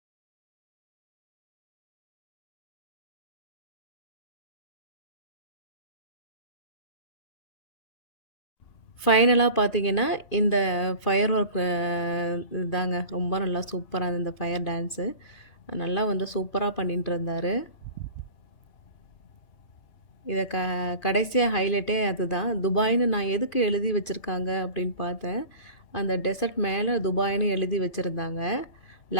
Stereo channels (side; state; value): right; late; 2.5 ms